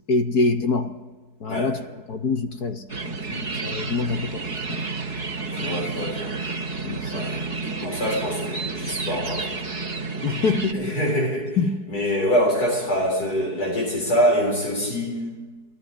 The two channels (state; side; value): late; right; 4.7 ms